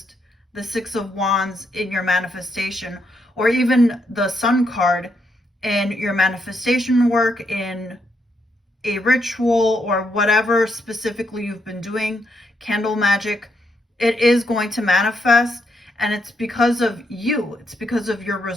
the Six of Wands in your manifestation, or even the Sun card in your manifestation work, in a ritual, or whatever specifically you've been doing, candle magic. It is going to manifest, and it's because of you. It's because of your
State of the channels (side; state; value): both; normal; correlation 0.78